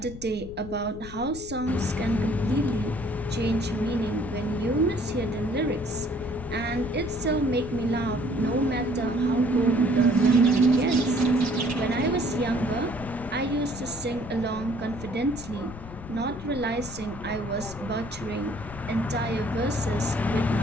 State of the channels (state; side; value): noise; left; rumble, 14 dB below the sound